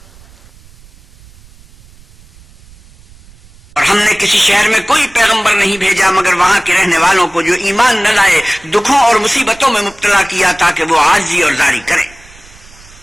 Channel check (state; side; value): noise; right; rumble, 25 dB below the sound